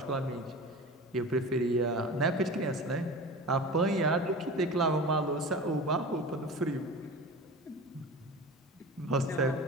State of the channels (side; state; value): both; normal; correlation 0.33